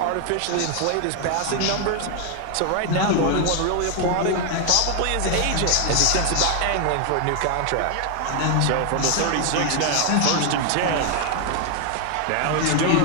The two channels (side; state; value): both; different; correlation 0.00